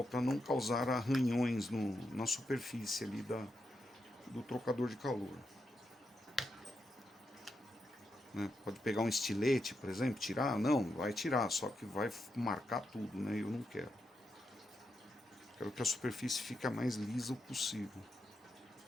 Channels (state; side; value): normal; both; correlation 0.84